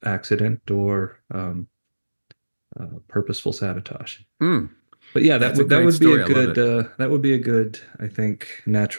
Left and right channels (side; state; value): both; inverted; correlation -1.00